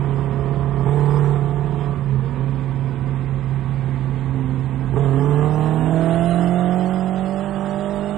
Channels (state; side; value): quieter; left; 13.1 dB